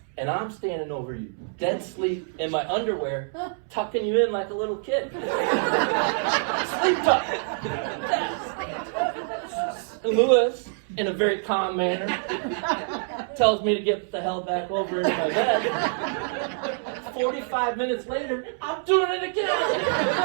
And I'm standing over you, dead sleep in my underwear, tucking you in like a little kid. Sleep tuck. And Lewis, in a very calm manner, tells me to get the hell back over into my bed. 45 minutes later, I'm doing it again.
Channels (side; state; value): left; silent; 61 dB below the other